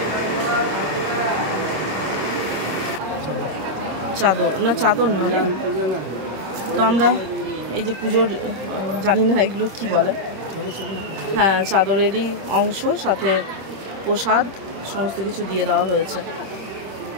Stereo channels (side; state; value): left; late; 26 ms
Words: চাদর না, চাদর না রে। তো আমরা এই যে পুজোর, জানি না এগুলো কি বলে, হ্যাঁ চাদরেরই অংশ, সাথে প্রসাদ সমস্ত কিছু দিয়ে দেওয়া হয়েছে।